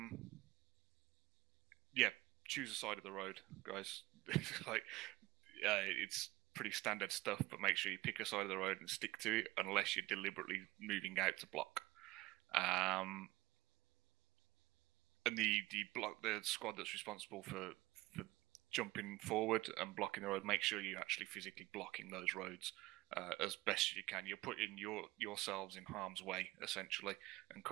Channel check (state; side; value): quieter; left; 19.7 dB